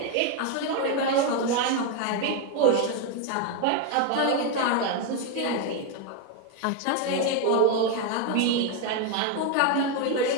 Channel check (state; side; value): different; both; correlation 0.02